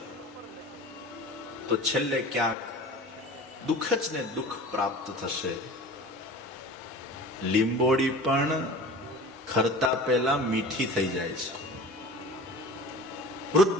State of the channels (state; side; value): normal; both; correlation 0.38